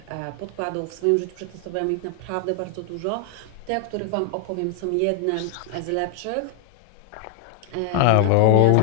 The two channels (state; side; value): different; both; correlation 0.00